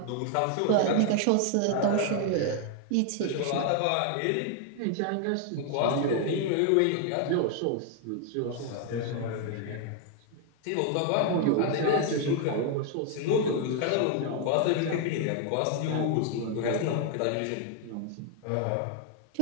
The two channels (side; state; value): both; different; correlation 0.00